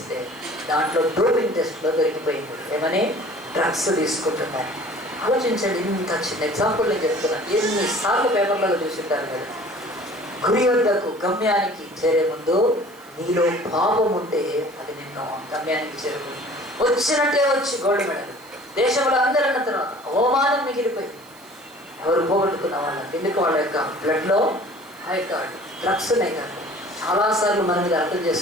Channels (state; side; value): noise; right; hiss, 25 dB below the sound